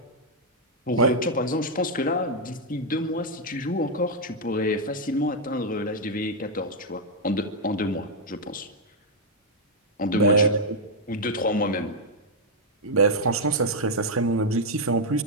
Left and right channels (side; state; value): both; normal; correlation -0.02